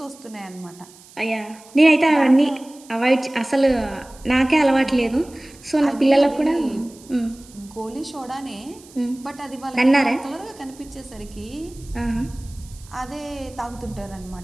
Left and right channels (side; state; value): right; noise; hiss, 23 dB below the sound